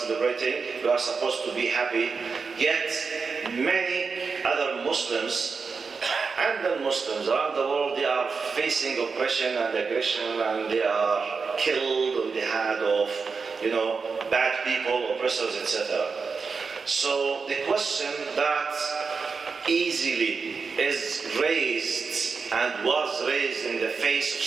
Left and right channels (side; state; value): left; quieter; 5.0 dB